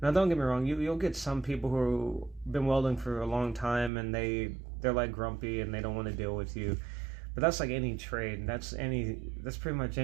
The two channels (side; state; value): left; drops out; at 3.9 s